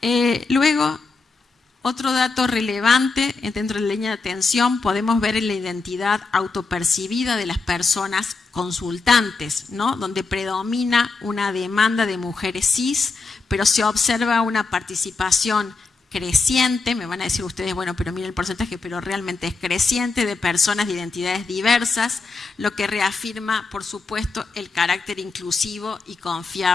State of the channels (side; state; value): right; quieter; 4.1 dB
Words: Luego, otro dato relevante dentro de la línea de atención, podemos ver en la identidad autopercibida de las personas consultantes, ¿no? Donde predomina una demanda de mujeres cis, pero se observa una participación creciente, me van a decir ustedes, bueno, pero miren el porcentaje, pero realmente es creciente, de personas de identidades diversas, lo que reafirma, por supuesto, el carácter inclusivo y